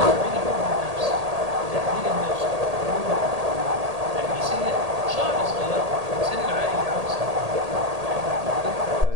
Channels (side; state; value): left; late; 1.8 ms